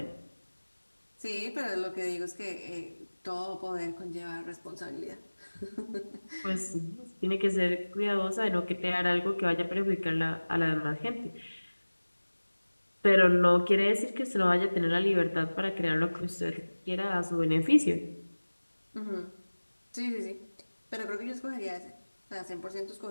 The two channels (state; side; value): inverted; both; correlation -1.00